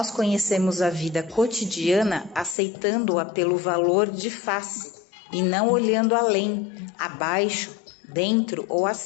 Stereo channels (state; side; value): drops out; right; at 2.6 s